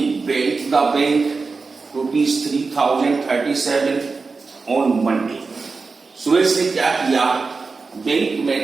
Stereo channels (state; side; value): quieter; left; 4.3 dB